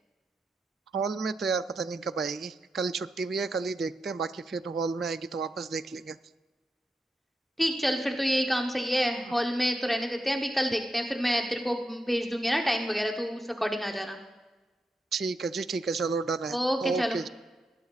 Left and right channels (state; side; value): normal; both; correlation 0.86